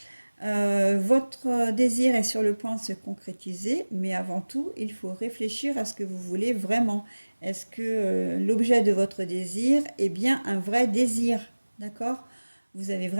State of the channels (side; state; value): both; inverted; correlation -1.00